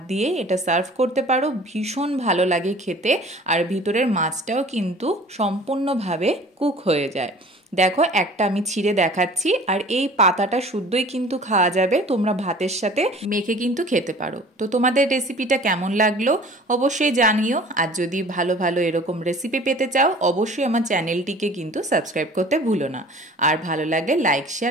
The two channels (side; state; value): both; normal; correlation 0.46